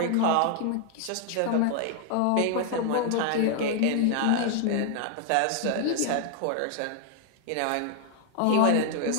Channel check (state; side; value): different; both; correlation 0.00